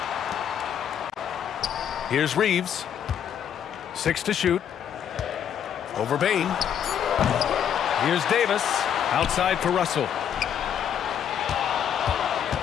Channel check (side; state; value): right; quieter; 9.0 dB